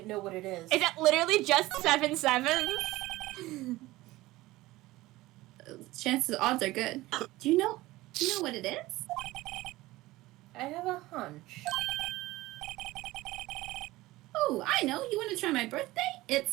know what it is. Is it literally just 7 sevens? Chances, odds are good. Do you know what it is? I have a hunch. Oh, I know. You want to try my birthday? It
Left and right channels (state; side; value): quieter; left; 18.4 dB